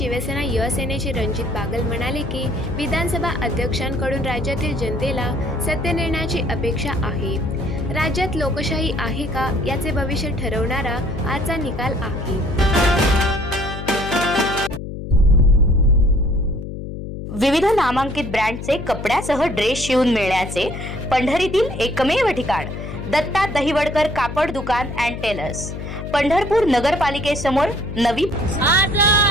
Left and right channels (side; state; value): left; noise; hum, 8 dB below the sound